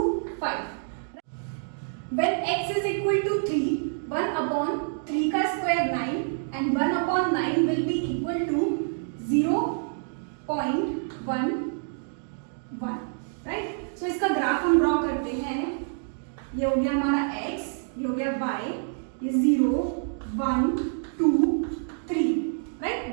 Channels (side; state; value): left; silent; digital silence